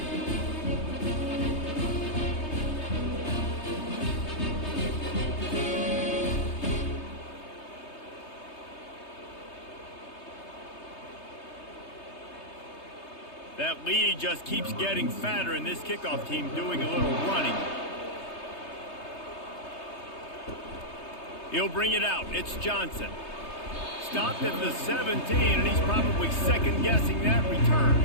That lead just keeps getting fatter, and this kickoff team doing a little running. He'll bring it out. It's Johnson. Stopped at the 17, and he's probably second-guessing that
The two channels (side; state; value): right; late; 3.3 ms